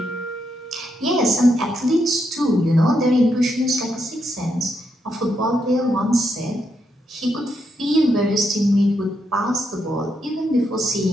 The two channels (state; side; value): normal; both; correlation 0.80